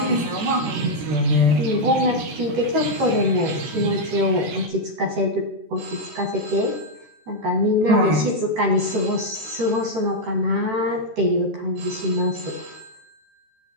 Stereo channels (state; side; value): late; left; 14 ms